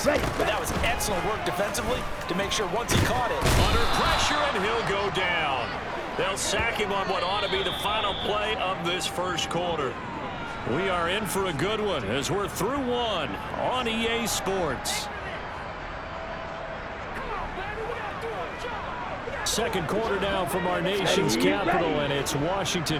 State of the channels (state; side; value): identical; both; correlation 1.00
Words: But that was excellent work defensively to make sure once he caught it. Under pressure, and he'll go down. They'll sack him on what ought to be the final play of this first quarter. We are in for a good one as we're through one on EA Sports. Second quarter now from our nation's capital, and it's